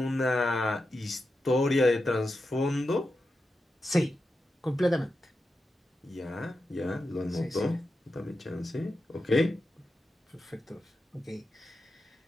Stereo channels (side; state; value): both; normal; correlation 0.89